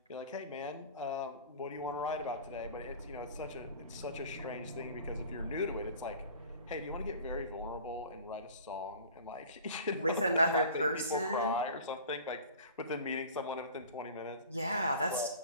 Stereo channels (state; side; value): inverted; both; correlation -0.42